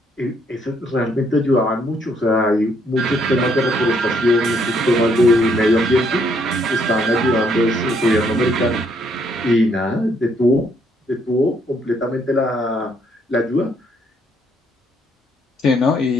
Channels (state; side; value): normal; both; correlation 0.70